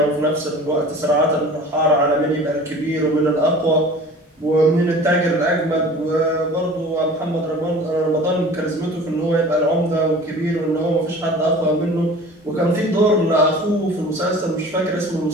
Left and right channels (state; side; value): normal; both; correlation 0.43